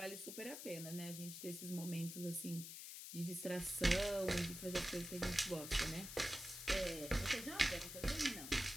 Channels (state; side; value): noise; left; hiss, 9 dB below the sound